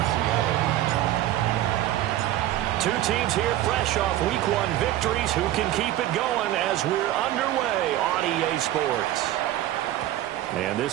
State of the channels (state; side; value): quieter; left; 13.8 dB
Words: Two teams here fresh off Week 1 victories. Who can keep it going as we're underway on EA Sports? And